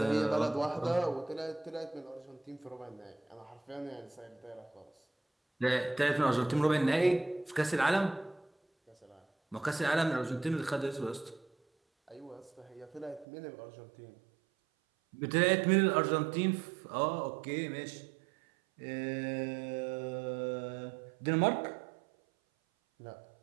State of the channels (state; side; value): drops out; left; at 13.2 s